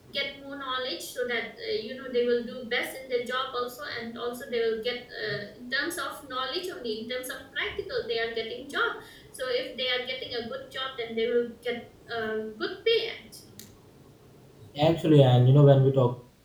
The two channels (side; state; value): both; identical; correlation 1.00